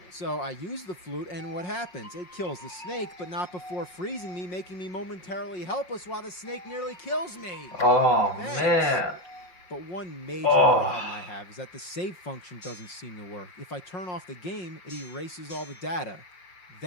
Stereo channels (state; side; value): late; right; 5.5 ms